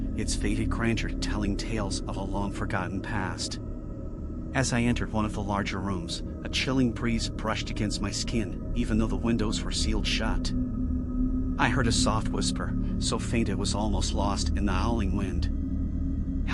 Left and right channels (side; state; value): both; identical; correlation 1.00